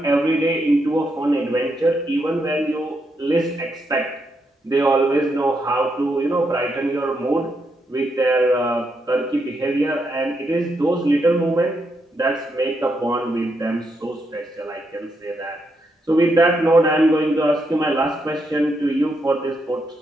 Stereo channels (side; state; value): both; normal; correlation 0.80